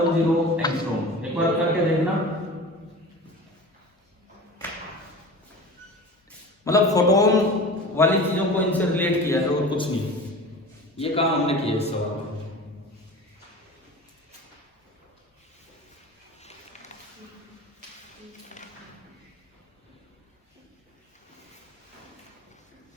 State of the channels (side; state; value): both; normal; correlation 0.36